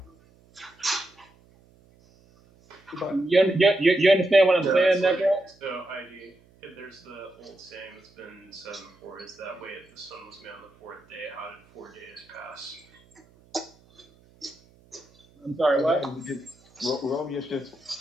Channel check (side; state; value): right; noise; hum, 29 dB below the sound